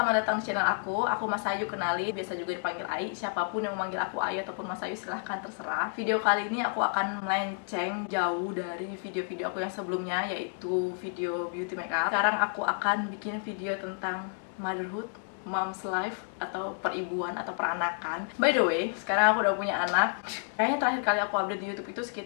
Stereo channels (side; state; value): right; silent; 58 dB below the other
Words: datang di channel aku. Aku Mas Ayu, kenali, biasa juga dipanggil Ai. Siapapun yang memanggil aku Ayu ataupun Mas Ayu silahkan terserah. Video kali ini aku akan melenceng jauh dari video-video aku yang sebelumnya, yaitu video beauty makeup. Sekarang aku akan bikin video tentang motherhood, mom's life, atau peribuan atau peranakan. By the way, sekarang aku udah punya anak. Kayaknya terakhir kali aku update di YouTube itu